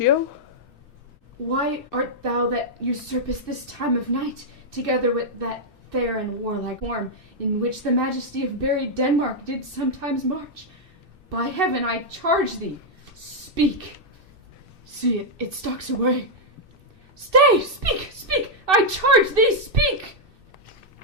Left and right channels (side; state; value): left; late; 2.6 ms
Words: Why art thou that usurpest this time of night, together with that fair and warlike form, in which the majesty of buried Denmark did sometimes march? By heaven, I charge thee, speak. See, it stalks away. Stay! Speak! Speak! I charge thee, speak!